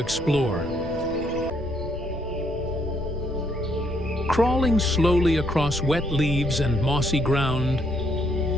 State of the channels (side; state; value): left; noise; rumble, 13 dB below the sound